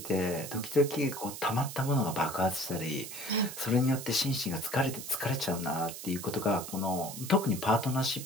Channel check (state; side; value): noise; right; hiss, 10 dB below the sound